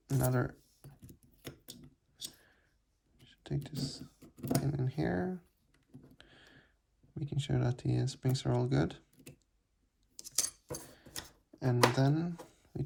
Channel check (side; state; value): both; identical; correlation 1.00